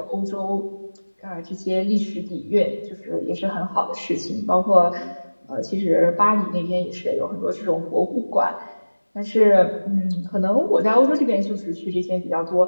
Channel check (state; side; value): inverted; both; correlation -1.00